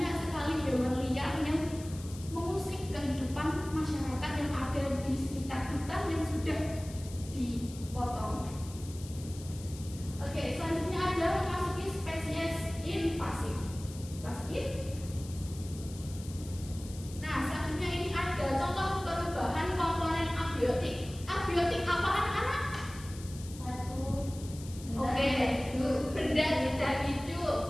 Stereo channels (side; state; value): left; noise; hiss, 17 dB below the sound